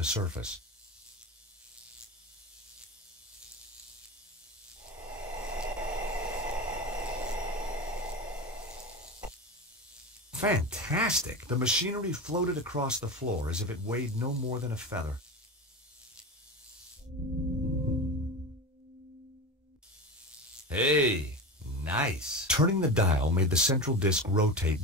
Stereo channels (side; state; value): both; normal; correlation 0.25